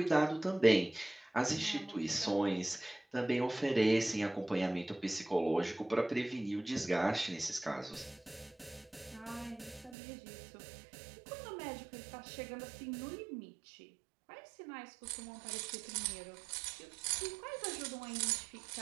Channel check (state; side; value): drops out; left; at 10.0 s